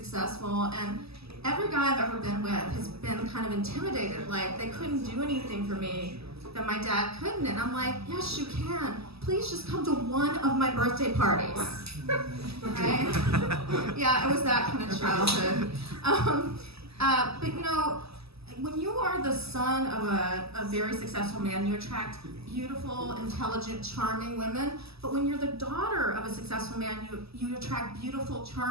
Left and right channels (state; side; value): late; left; 0.78 ms